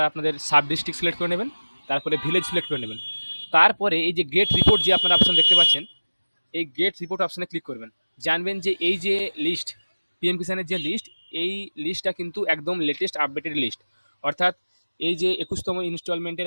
আপনাদের সাব ডিস্ট্রিক্ট সিলেক্ট করে নেবেন। তারপরে ভিলেজ সিলেক্ট করে নেবেন। তারপরে এই যে গেট রিপোর্ট যে আপনারা অপশন দেখতে পাচ্ছেন, এই গেট রিপোর্ট অপশনে ক্লিক করবেন। জানবেন যে এই যে লিস্ট, পিএম কিষানের যে লিস্ট, এই লিস্টটা কিন্তু একদম লেটেস্ট আপডেটেড লিস্ট। অর্থাৎ এই যে 21তম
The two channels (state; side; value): inverted; both; correlation -1.00